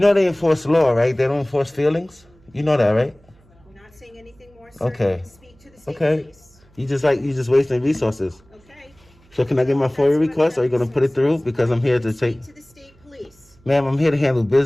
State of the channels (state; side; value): noise; right; hum, 30 dB below the sound